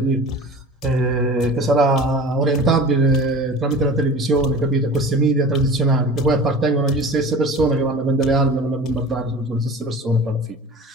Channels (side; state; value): both; normal; correlation 0.38